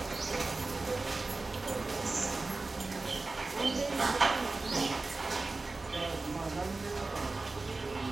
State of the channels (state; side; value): quieter; left; 3.5 dB